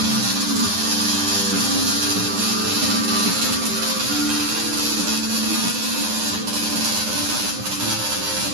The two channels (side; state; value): left; late; 9.8 ms